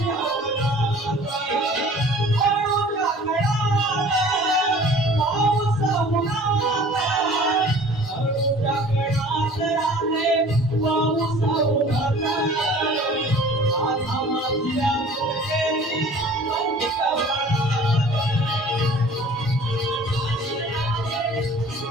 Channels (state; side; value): normal; both; correlation 0.48